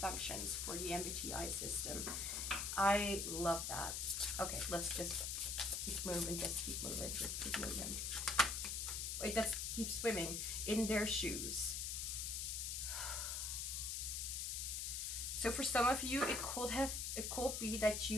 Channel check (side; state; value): left; noise; hiss, 1 dB below the sound